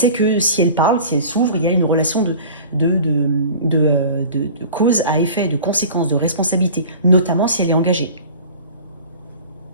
que si elle parle, si elle s'ouvre, il y a une relation de cause à effet, de conséquences, de responsabilité, notamment si elle est engagée.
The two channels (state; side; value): inverted; both; correlation -0.41